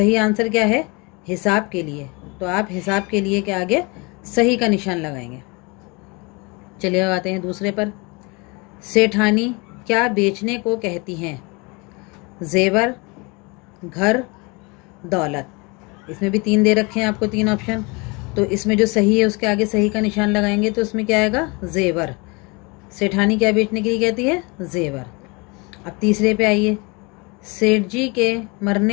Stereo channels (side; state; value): right; quieter; 28.1 dB